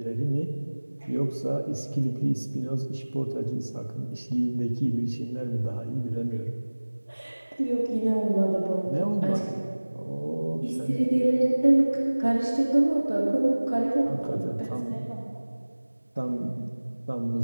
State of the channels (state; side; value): inverted; both; correlation -1.00